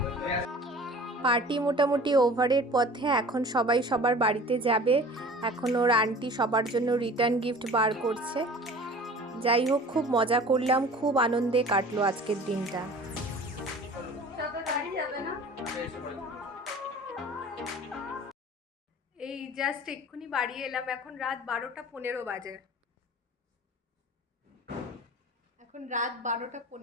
পার্টি মোটামুটি ওভারের পথে, এখন সবাই সবার বাড়িতে যাবে। এখন ওর আন্টি সবার জন্য রিটার্ন গিফট বার করছে। যাই হোক, খুব মজা করলাম, খুব আনন্দে কাটলো আজকের দিনটা। সবে বাড়ি যাবে না? এই জাস্ট এক্ষুনি বাড়ি এলাম, এখন রাত 12:15 বাজে। এখন রাত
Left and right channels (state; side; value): normal; both; correlation 0.43